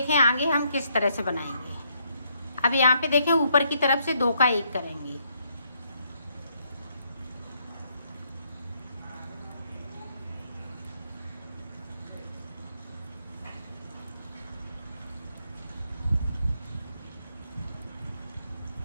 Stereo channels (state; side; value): inverted; both; correlation -0.73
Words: आगे हम किस तरह से बनाएंगे। अब यहाँ पे देखें ऊपर की तरफ से 2 का 1 करेंगे।